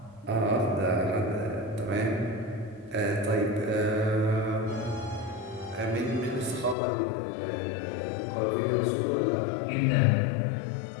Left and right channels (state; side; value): drops out; right; at 6.8 s